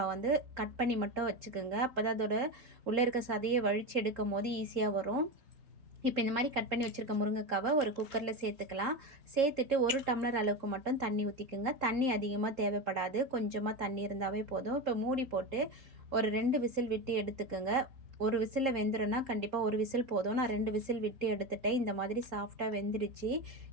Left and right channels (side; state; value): left; late; 3.7 ms